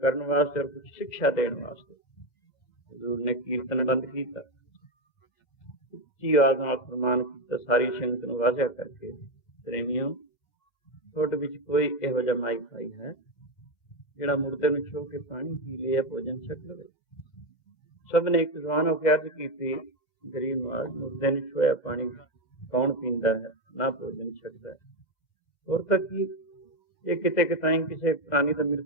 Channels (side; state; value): right; late; 2.0 ms